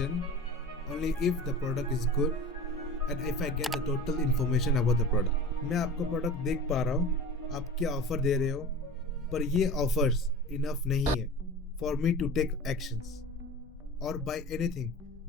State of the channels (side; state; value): both; normal; correlation 0.35